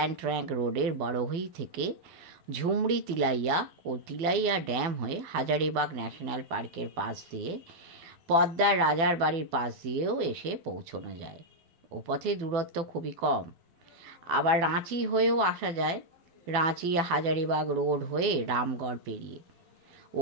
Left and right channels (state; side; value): late; left; 12 ms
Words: ট্র্যাঙ্ক রোডের বড়হই থেকে ঝুমড়ি তিলাইয়া ও তিলাইয়া ড্যাম হয়ে হাজারিবাগ ন্যাশনাল পার্কের পাশ দিয়ে পদ্মার রাজার বাড়ির পাশ দিয়েও এসে পৌঁছানো যায়। ও পথে দূরত্ব খুবই কম। আবার রাঁচি হয়েও আসা যায়, রাঁচি হাজারিবাগ রোড হয়ে রামগড় পেরিয়ে। ও